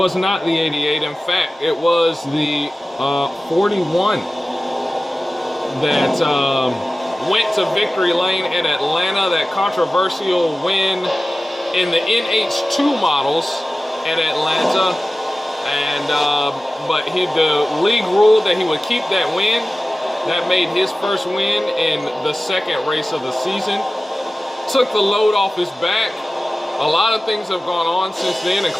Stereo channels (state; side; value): normal; both; correlation 0.96